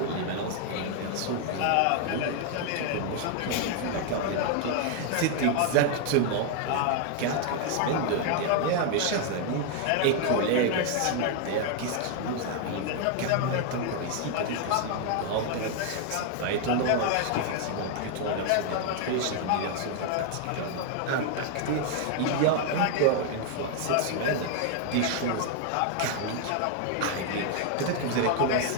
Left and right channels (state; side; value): different; both; correlation 0.00